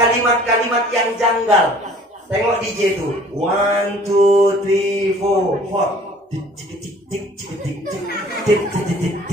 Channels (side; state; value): both; normal; correlation 0.52